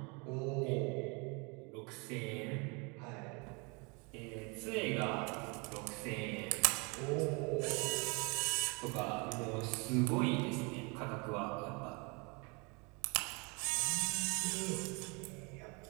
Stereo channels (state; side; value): quieter; left; 30.7 dB